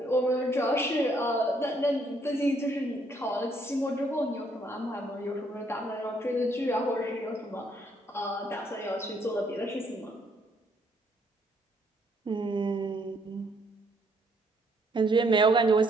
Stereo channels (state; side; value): normal; both; correlation 0.69